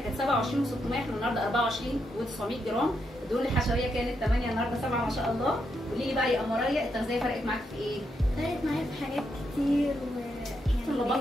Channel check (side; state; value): both; normal; correlation 0.81